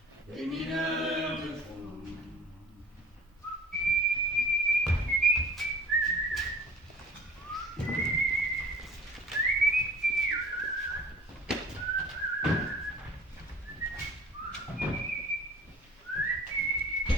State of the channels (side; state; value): both; normal; correlation 0.48